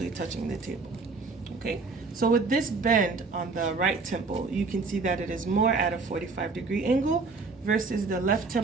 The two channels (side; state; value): left; quieter; 4.2 dB